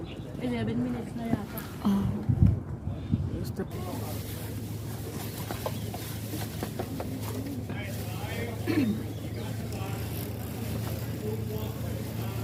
11 minutes na yata.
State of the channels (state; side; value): identical; both; correlation 1.00